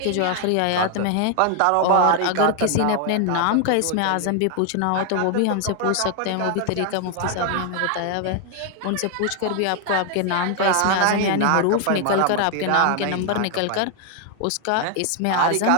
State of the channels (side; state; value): both; different; correlation 0.00